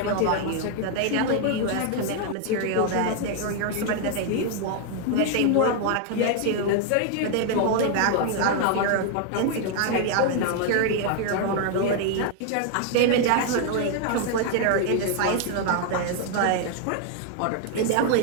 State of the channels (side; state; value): both; different; correlation 0.00